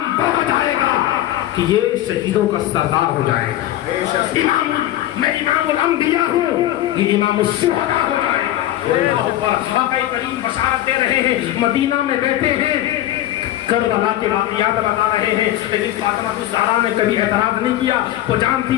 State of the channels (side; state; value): right; quieter; 13.7 dB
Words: وہ ہو جائے گا کہ یہ شہیدوں کا سردار ہو جائے گا، امام، میں امام الانبیاء ہوں، یہ امام الشہداء ہو جائے گا۔ اللہ اکبر۔ آقا کریم بشارت دے رہے ہیں، مدینہ میں بیٹھے ہیں، کربلا کے واقعات بتا رہے ہیں، لیکن فاطمہ الزہرا نے کبھی اعتراض نہیں کیا، وہ جانتی